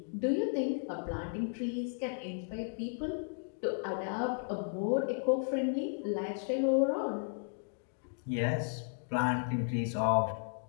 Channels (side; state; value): right; silent; digital silence